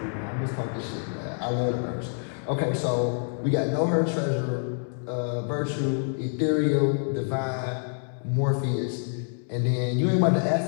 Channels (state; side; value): silent; right; digital silence